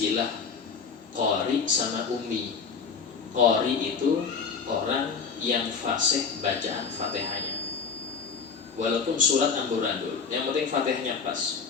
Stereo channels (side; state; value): right; quieter; 5.7 dB